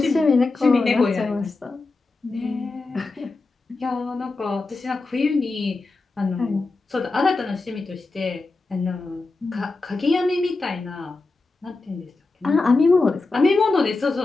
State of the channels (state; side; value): quieter; right; 3.5 dB